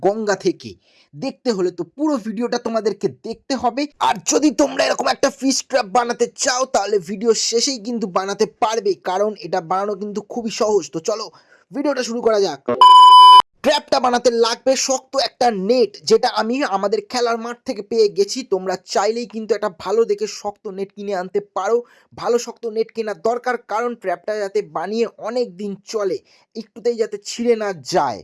গঙ্গা থেকে। দেখতে হলে তো পুরো ভিডিওটা তোমাদেরকে দেখতে হবে। আর যদি তোমরা এরকম একটা ফিশ ট্র্যাপ বানাতে চাও তাহলে ভিডিও শেষেই কিন্তু বানাতে পারবে, কারণ এটা বানানো কিন্তু খুবই সহজ। তো চলো ভিডিওটা শুরু করা যাক। ট্র্যাপটা বানাতে লাগবে শক্ত একটা নেট, যেটা আমি আমাদের খেলার মাঠ থেকে পেয়ে গেছি। তোমরা চাইলেই কিন্তু একটা ভালো দেখে শক্ত নেট কিনে আনতে পারো। ভালো শক্ত নেট কেনার দরকার, কারণ ট্র্যাপটা যাতে বানিয়ে অনেক দিন চলে, একটুতেই যাতে ছিঁড়ে না যায়।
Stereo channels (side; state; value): both; identical; correlation 1.00